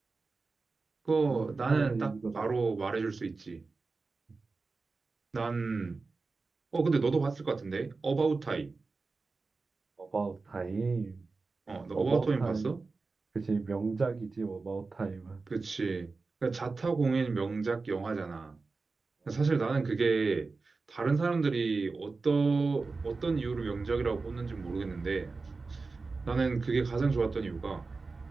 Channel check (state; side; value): quieter; left; 4.0 dB